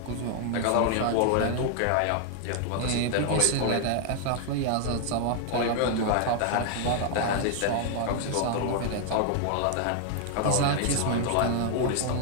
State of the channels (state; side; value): different; both; correlation 0.00